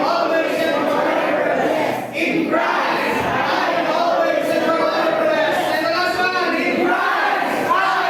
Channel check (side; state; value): both; identical; correlation 1.00